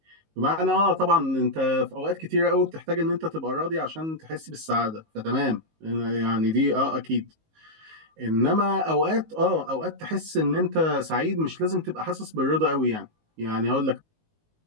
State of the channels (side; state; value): left; late; 19 ms